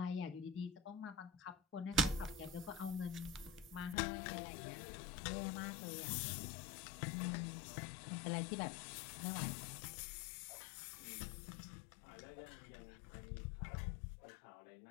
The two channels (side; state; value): right; drops out; at 4.0 s